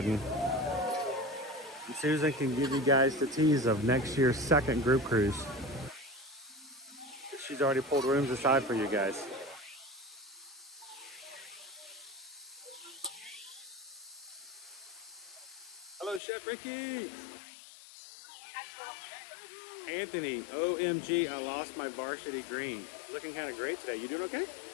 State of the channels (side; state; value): right; drops out; at 16.2 s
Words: And Susan can give you guys the tease of next year's second group cruise. She's already pulled rooms aside for you guys. Hello, Chef Ricky. Anthony, OMG, I lost my varsity green. Looking kind of great today. You doing okay?